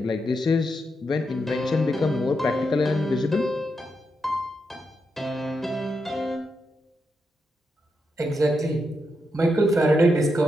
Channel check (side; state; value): both; normal; correlation 0.84